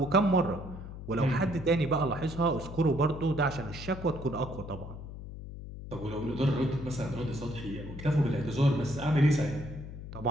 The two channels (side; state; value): left; noise; hum, 11 dB below the sound